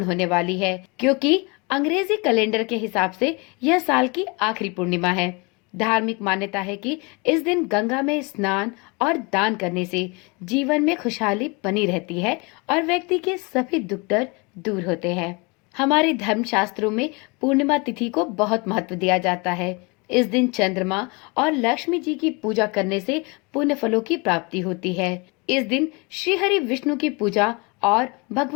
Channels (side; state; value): right; quieter; 29.0 dB